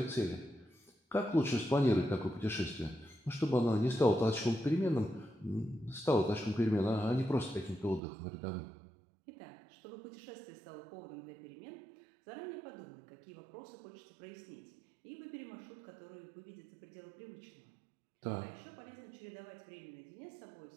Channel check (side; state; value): left; drops out; at 8.0 s